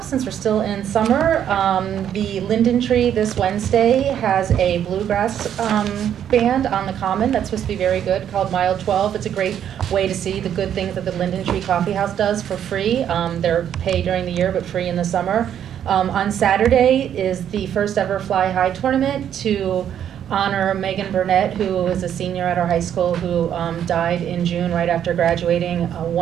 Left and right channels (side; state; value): left; quieter; 9.7 dB